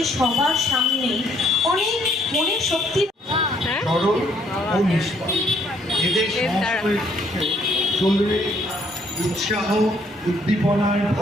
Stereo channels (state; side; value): normal; both; correlation 0.67